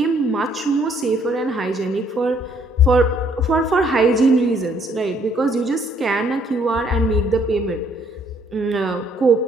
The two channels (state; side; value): normal; both; correlation 0.65